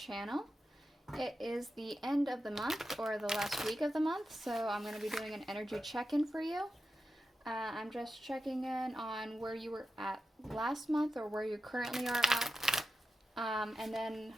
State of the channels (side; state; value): both; normal; correlation 0.91